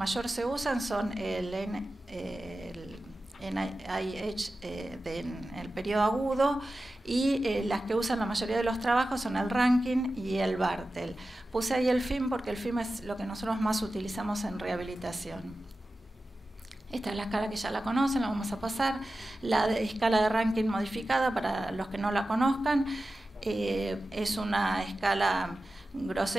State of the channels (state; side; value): normal; both; correlation 0.94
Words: se usan son el NIH en el periodo agudo, y las que usan la mayoría de los trabajos son el Rankin y el Bartel. Puse ahí el FIM porque el FIM es lo que nosotros más utilizamos en rehabilitación. Esta es la escala que ya la conocen, la vamos a pasar. La escala de Rankin modificada, para los que no la conozcan, es una escala